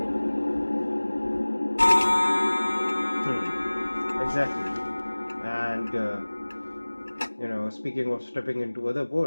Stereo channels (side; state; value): both; inverted; correlation -1.00